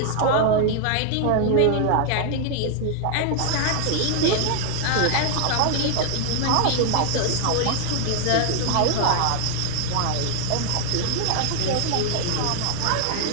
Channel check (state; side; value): different; both; correlation 0.00